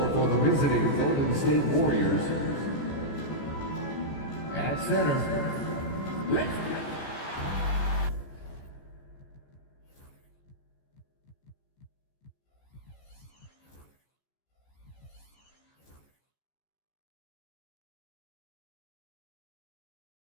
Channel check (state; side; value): late; right; 14 ms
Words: for the visiting Golden State Warriors. At center, let's go.